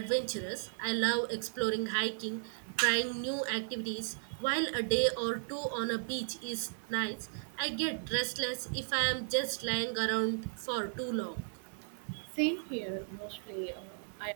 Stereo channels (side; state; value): left; silent; digital silence